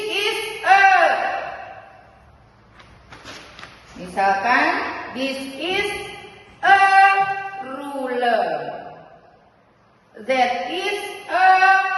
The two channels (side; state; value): both; identical; correlation 1.00